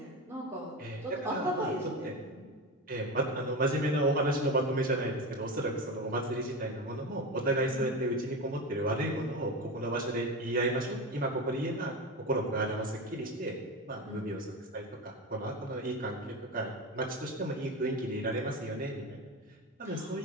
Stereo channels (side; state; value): both; normal; correlation 0.22